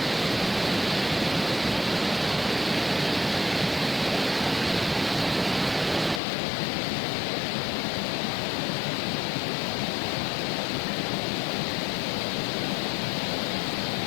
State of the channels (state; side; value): drops out; right; at 6.2 s